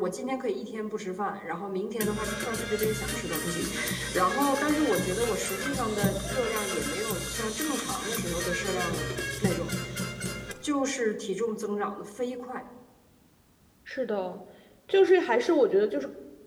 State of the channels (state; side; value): identical; both; correlation 1.00